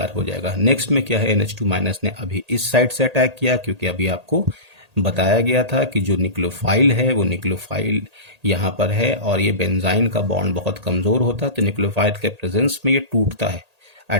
हो जाएगा। नेक्स्ट में क्या है, NH2 माइनस ने अभी इस साइड से अटैक किया, क्योंकि अभी आपको बताया गया था कि जो न्यूक्लियोफाइल है वो न्यूक्लियोफाइल यहाँ पर है और ये बेंजाइन का बॉन्ड बहुत कमज़ोर होता है, तो न्यूक्लियोफाइल के प्रेजेंस में ये टूटता है।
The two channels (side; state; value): left; late; 1.8 ms